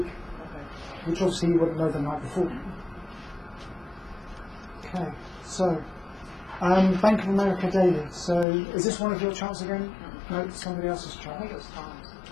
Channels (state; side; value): drops out; right; at 8.5 s